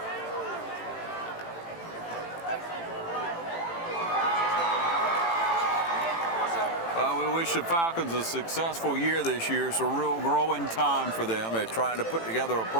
Well, we wish the Falcons a successful year this year. It's a real growing time for them. They're trying to put together a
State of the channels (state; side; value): late; right; 18 ms